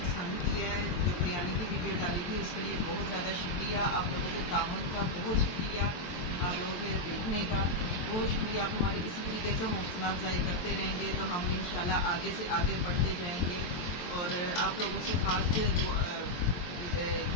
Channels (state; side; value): late; right; 23 ms